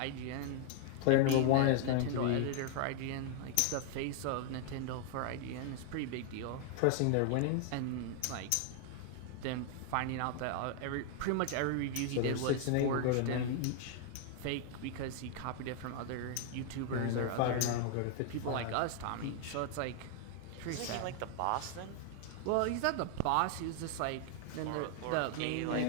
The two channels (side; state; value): both; different; correlation 0.00